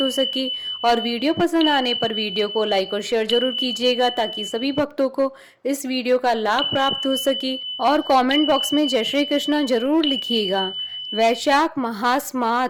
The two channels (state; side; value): identical; both; correlation 1.00